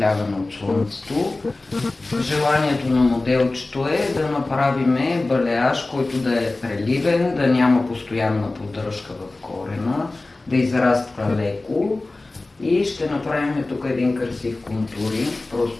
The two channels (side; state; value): right; quieter; 3.1 dB